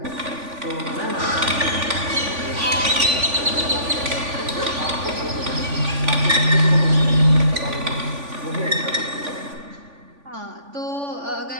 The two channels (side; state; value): left; late; 3.5 ms